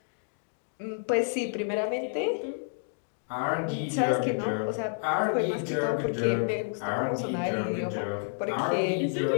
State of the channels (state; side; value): silent; right; digital silence